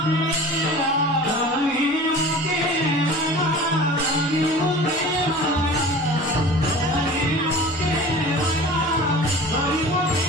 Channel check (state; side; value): normal; both; correlation 0.40